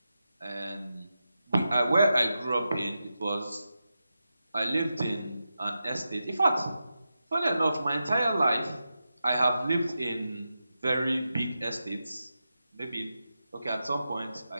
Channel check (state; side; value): inverted; both; correlation -0.90